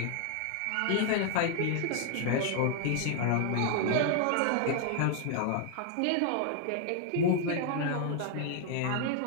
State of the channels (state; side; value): different; both; correlation 0.00